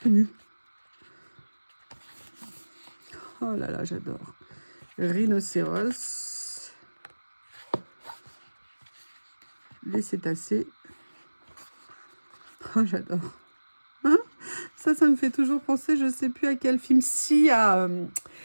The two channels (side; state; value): both; inverted; correlation -1.00